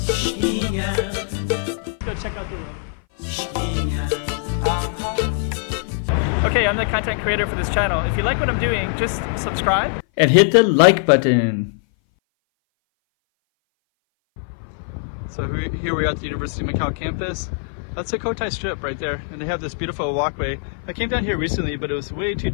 Let's go check out the room. Okay, I'm the content creator for this channel. If you like what I'm doing, just subscribe and hit the like button. So here we are at the University of Macau campus. That's the Cotai Strip right there, and they have this beautiful walkway. I came down here recently, but it was way too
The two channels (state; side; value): silent; right; 59 dB below the other